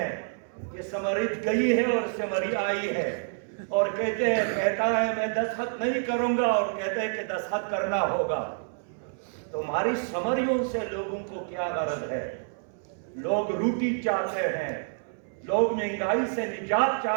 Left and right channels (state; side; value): silent; left; 59 dB below the other